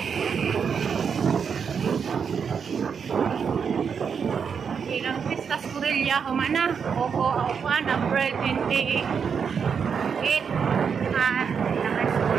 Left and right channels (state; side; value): quieter; left; 6.6 dB